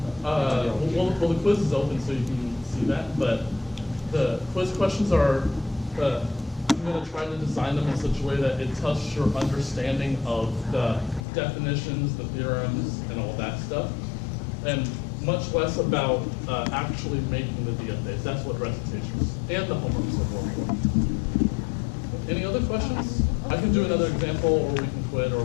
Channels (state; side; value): drops out; right; at 11.2 s